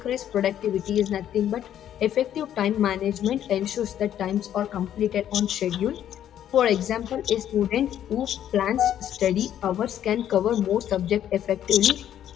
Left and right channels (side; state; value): right; quieter; 10.7 dB